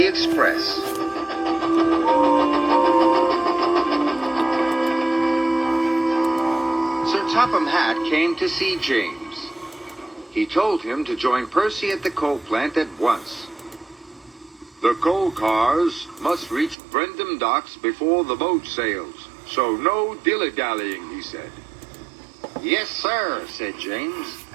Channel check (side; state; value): left; drops out; at 16.8 s